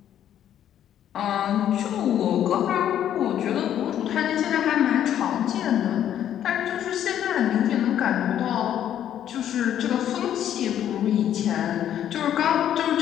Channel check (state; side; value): quieter; right; 10.6 dB